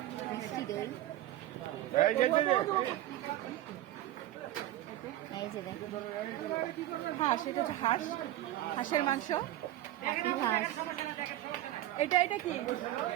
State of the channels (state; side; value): quieter; left; 14.2 dB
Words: মিষ্টি দই। এই যে দেখো হাঁস, এটা হচ্ছে হাঁস, হাঁসের মাংস। পাতি হাঁস, এটা এটা কি?